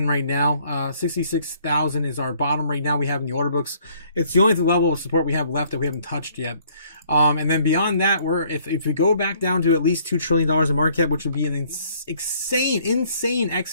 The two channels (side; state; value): both; inverted; correlation -0.61